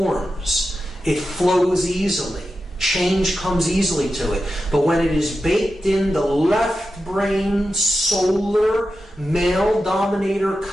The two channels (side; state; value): both; normal; correlation 0.90